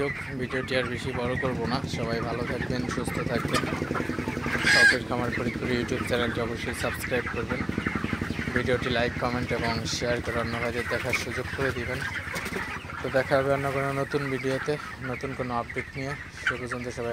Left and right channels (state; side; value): noise; left; hum, 27 dB below the sound